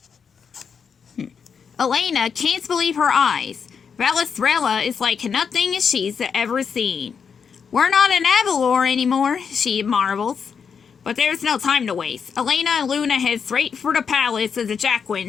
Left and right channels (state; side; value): quieter; right; 6.5 dB